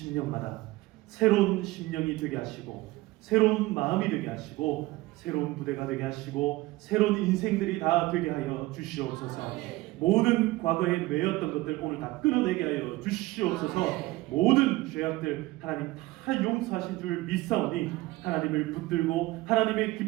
새로운 심령이 되게 하시고 새로운 마음이 되게 하시고 새로운 부대가 되게 하시고 새로운 인생들이 다 되게 하여 주시옵소서. 모든 과거에 매였던 것들 오늘 다 끊어내게 하여 주시옵소서. 모든 죄악들 하나님 다 용서하신 줄 믿사오니 하나님을 붙들고 하나님의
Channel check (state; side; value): quieter; left; 19.6 dB